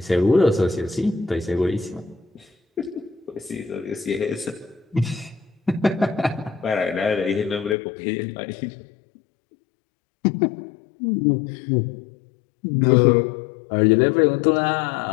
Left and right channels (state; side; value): drops out; right; at 7.8 s